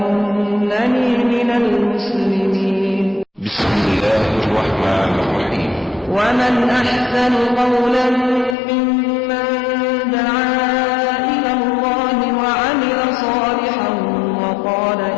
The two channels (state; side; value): drops out; right; at 8.6 s